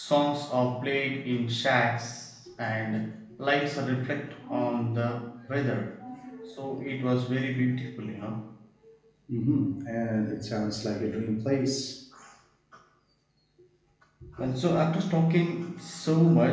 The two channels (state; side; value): identical; both; correlation 1.00